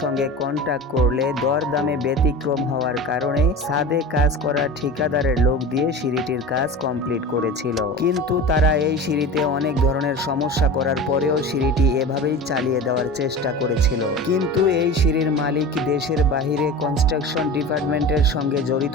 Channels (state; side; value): normal; both; correlation 0.32